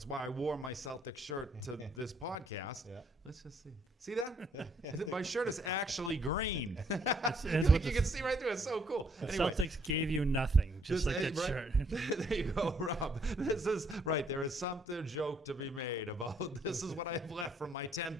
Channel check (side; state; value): both; normal; correlation 0.67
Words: why I wore my Celtics shirt to this podcast. Yeah. Let's just see. See that? My shirt is actually green. it's you what the- can see right through it. It's so cool. The Anyway, Celtics gave you nothing, just like that right? shirt. There you go, Rob. This is right. There is something joke to be made about this is what I have left from my